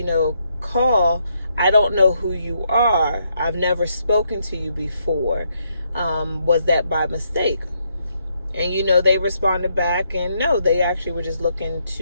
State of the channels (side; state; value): both; inverted; correlation -0.76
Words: call. I don't know who you are. I've never spoken to you before. Was that by mistake? And, they responded back, and no, they actually were just looking